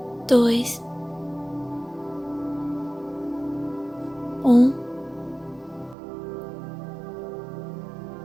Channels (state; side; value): drops out; left; at 6.0 s